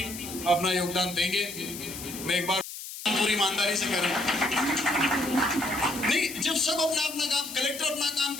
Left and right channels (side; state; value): left; noise; hiss, 10 dB below the sound